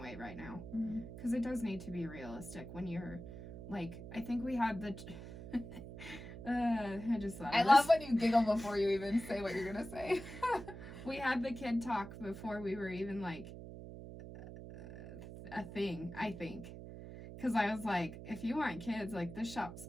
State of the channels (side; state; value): right; noise; hum, 12 dB below the sound